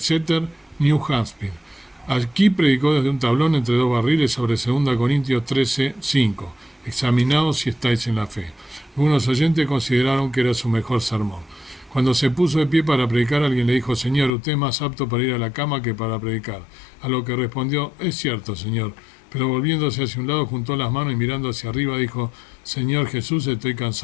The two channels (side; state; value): right; drops out; at 14.3 s